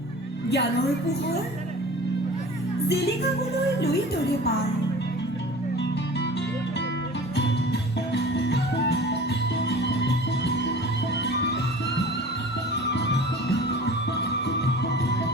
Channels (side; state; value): both; normal; correlation 0.41